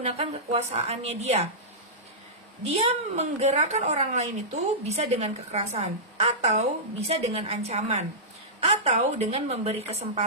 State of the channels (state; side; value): normal; both; correlation -0.15